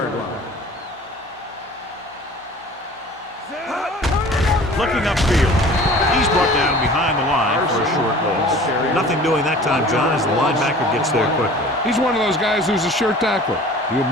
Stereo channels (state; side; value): normal; both; correlation 0.45